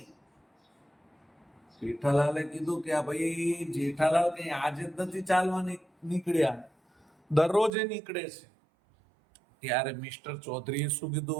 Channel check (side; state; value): left; drops out; at 7.7 s